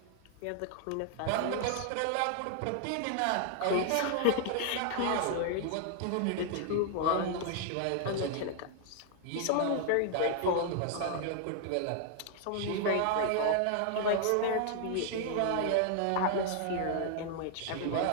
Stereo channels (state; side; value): different; both; correlation 0.00